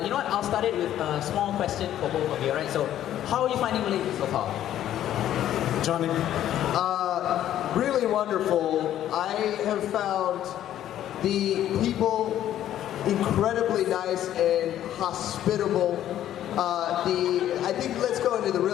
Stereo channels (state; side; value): quieter; right; 11.8 dB